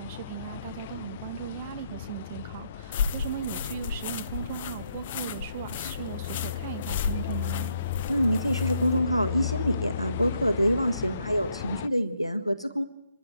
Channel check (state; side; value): inverted; both; correlation -0.74